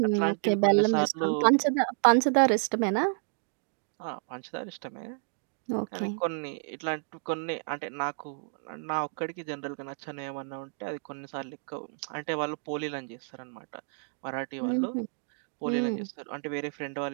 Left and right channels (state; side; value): silent; left; 55 dB below the other